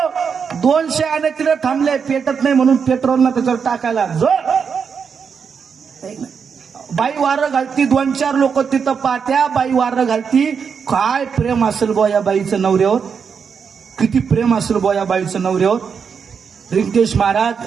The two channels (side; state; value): left; quieter; 6.3 dB